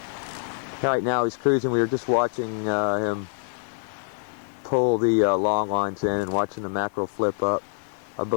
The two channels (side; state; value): right; silent; digital silence